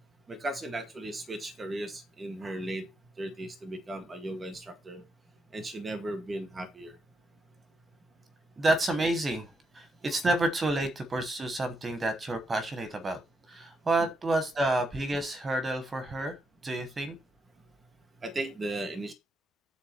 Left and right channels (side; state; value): both; normal; correlation 0.81